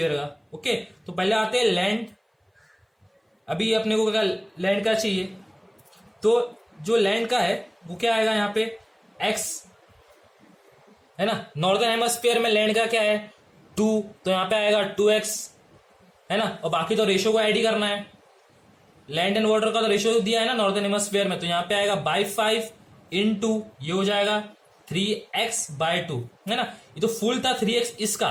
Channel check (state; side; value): identical; both; correlation 1.00